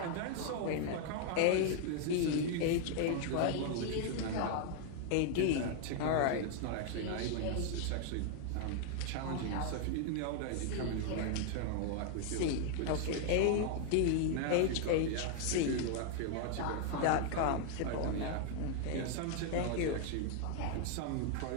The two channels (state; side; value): different; both; correlation 0.00